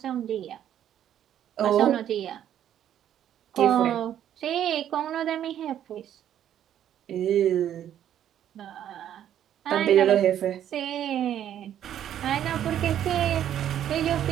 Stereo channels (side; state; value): left; quieter; 10.6 dB